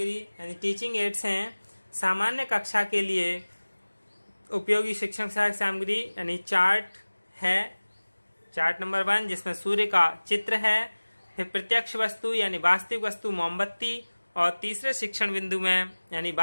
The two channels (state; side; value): inverted; both; correlation -1.00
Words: यानी टीचिंग एड्स हैं। सामान्य कक्षा के लिए उपयोगी शिक्षण सहायक सामग्री यानी चार्ट है, चार्ट नंबर 1 जिसमें सूर्य का चित्र है, फिर प्रत्यक्ष वस्तु यानी वास्तविक वस्तु मोमबत्ती, और तीसरे शिक्षण बिंदु में यानी